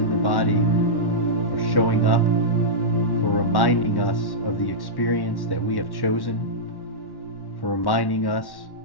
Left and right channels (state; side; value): late; right; 1.1 ms